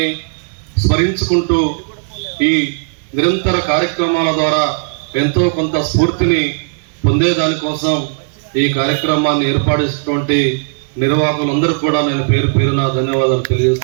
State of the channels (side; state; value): left; silent; digital silence